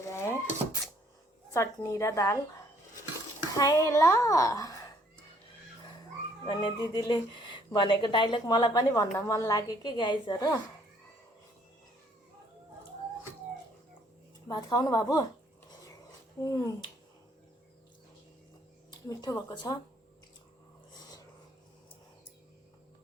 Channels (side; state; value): both; normal; correlation 0.64